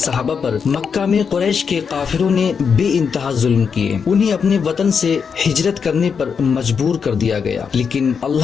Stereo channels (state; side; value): quieter; right; 6.3 dB